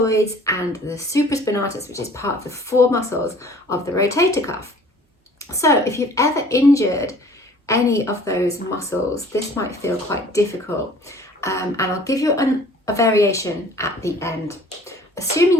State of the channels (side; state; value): both; normal; correlation 0.51